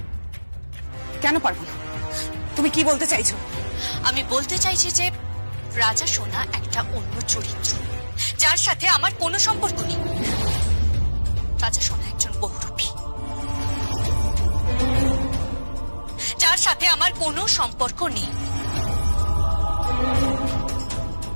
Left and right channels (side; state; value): both; inverted; correlation -1.00